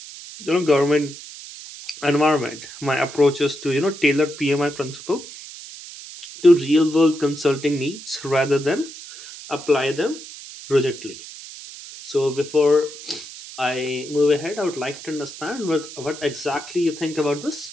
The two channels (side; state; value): right; noise; hiss, 14 dB below the sound